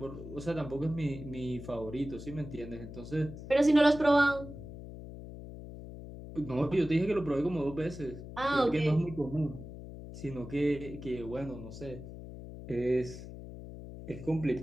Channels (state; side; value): noise; left; hum, 12 dB below the sound